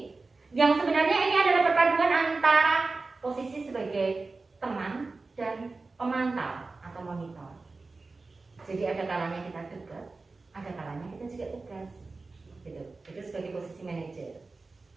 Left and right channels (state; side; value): quieter; left; 3.7 dB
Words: Yang sebenarnya ini adalah posisi sebagai teman dan pemantau atau monitor. Jadi ada kalanya kita dekat, ada kalanya kita juga tegas. Gitu. Itu sebagai posisi manajer.